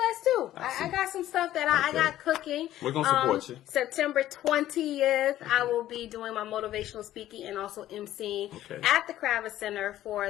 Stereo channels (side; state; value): right; quieter; 13.4 dB